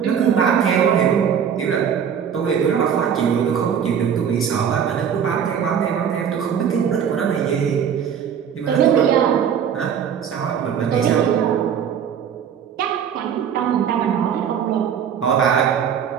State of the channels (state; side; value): quieter; left; 8.0 dB